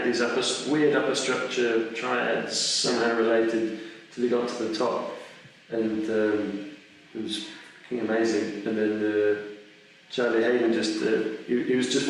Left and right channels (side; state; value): both; identical; correlation 1.00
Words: these weird upper structure triads somehow related till he got to the top, and it was fucking amazing. And then Charlie Hayden just, he was just